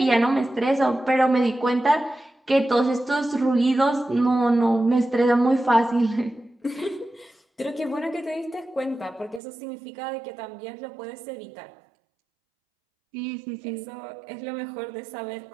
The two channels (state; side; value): drops out; left; at 9.4 s